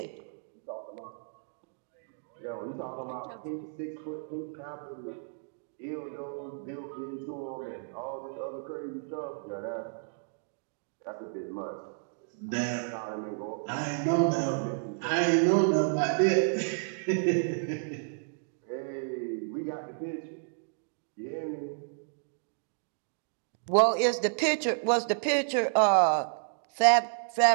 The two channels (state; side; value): silent; left; digital silence